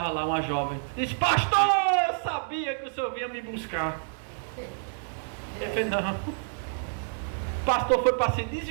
lá uma jovem. Diz: pastor, eu sabia que o senhor vinha me buscar. Ele falou: não. O pastor foi para se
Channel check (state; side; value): silent; left; digital silence